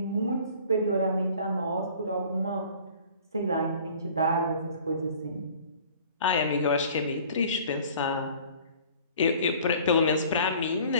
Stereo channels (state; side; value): inverted; both; correlation -0.49